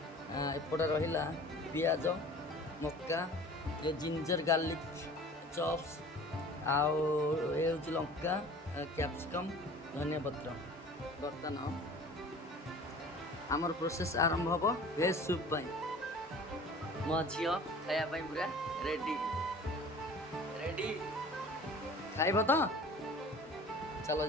रहा पियाज मक्का ये जिंजर गार्लिक चॉप्स आउ ये हूँ लंका कैप्सिकम धनिया पत्र बर्तमान आमर प्रोसेस आरंभ हम भेज सूप मो झी खायापी पूरा रेडी रेडी खाइब तो चलो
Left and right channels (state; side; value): normal; both; correlation 0.44